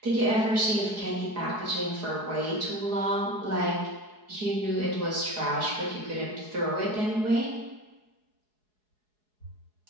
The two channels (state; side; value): late; left; 4.7 ms